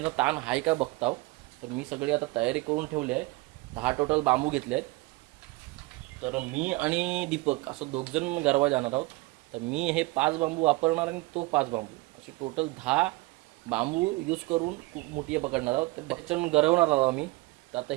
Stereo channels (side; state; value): left; quieter; 22.5 dB